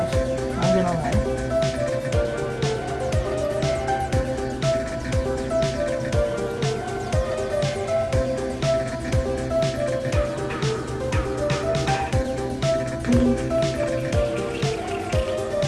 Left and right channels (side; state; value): both; identical; correlation 1.00